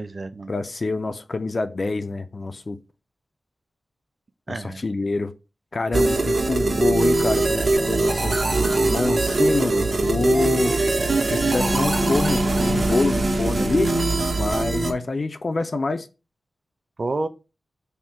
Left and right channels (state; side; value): normal; both; correlation 0.93